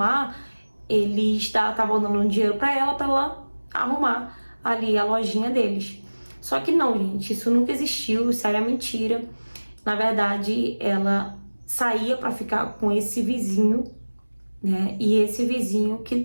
eles estavam dando um dinheiro pra ela arrumar ali a lojinha deles. Só que não, gente, isso nunca existiu, isso era mentira. Na verdade, ela saía pra ficar com esse vizinho, né? E esse vizinho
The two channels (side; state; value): both; inverted; correlation -1.00